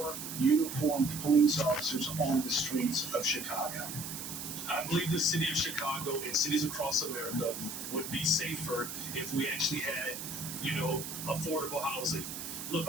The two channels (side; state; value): right; noise; hiss, 7 dB below the sound